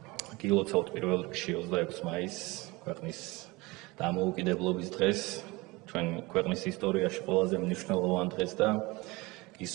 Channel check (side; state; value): left; quieter; 23.1 dB